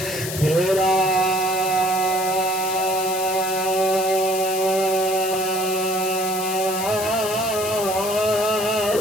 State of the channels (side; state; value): left; noise; hiss, 7 dB below the sound